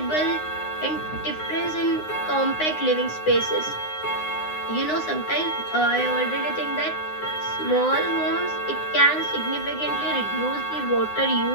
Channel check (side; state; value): right; late; 9.7 ms